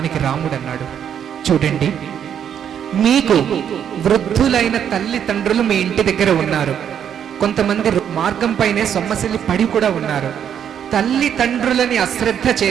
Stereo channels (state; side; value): quieter; left; 8.8 dB